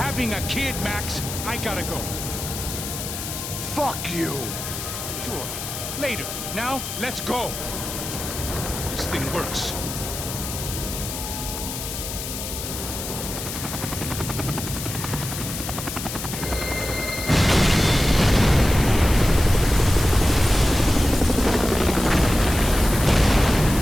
a kid, Max. I gotta go. Fuck you. Sure. Later. Now, let's go. This thing works.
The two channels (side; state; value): left; noise; hiss, 7 dB below the sound